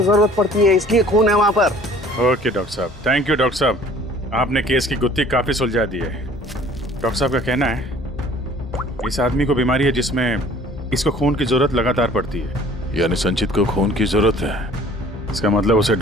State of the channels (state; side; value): normal; both; correlation 0.52